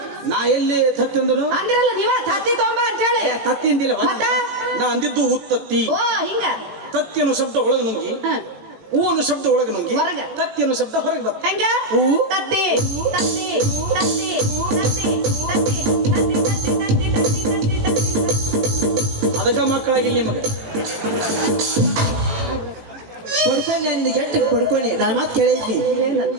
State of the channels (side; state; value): left; late; 18 ms